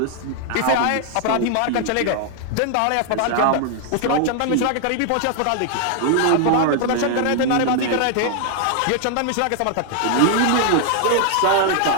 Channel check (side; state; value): both; different; correlation 0.00